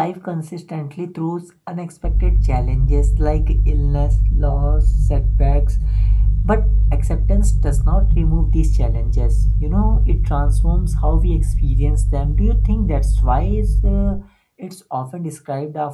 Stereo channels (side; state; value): both; identical; correlation 1.00